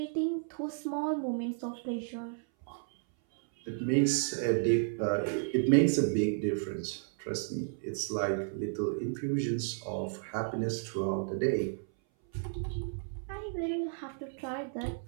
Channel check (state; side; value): silent; left; 56 dB below the other